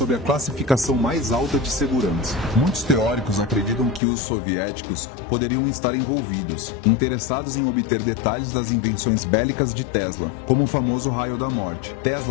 a classificação mais alta de segurança. Muitos teóricos acreditam que os soviéticos poderiam estar envolvidos, interessados em obter detalhes das invenções bélicas de Tesla, como o famoso raio da morte.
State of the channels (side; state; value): right; drops out; at 4.0 s